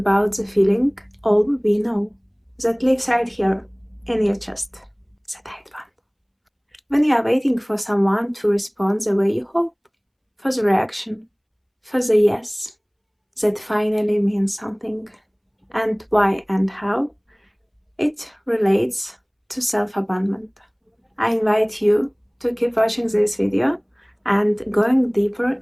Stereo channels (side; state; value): both; identical; correlation 1.00